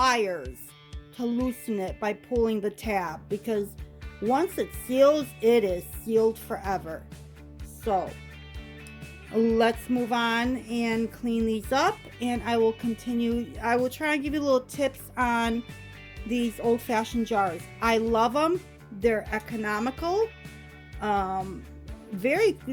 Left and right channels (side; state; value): both; identical; correlation 1.00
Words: to loosen it by pulling the tab, because once it seals, it is sealed forever. So let's move on and clean these up, and I will continue. I will try and give you little tips on these old-fashioned jars. I love them. They're economical. Very,